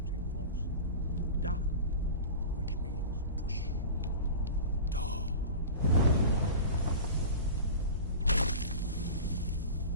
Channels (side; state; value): both; inverted; correlation -0.32